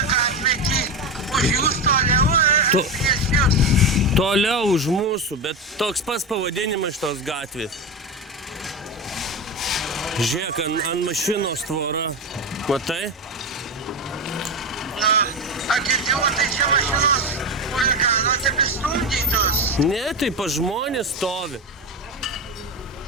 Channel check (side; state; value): both; normal; correlation 0.17